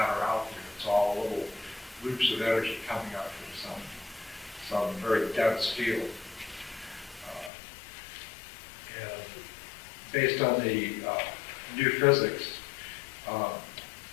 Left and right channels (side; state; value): right; drops out; at 7.5 s